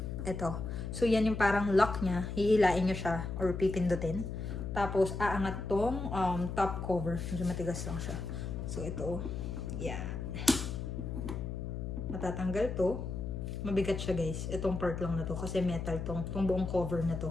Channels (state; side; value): noise; left; hum, 5 dB below the sound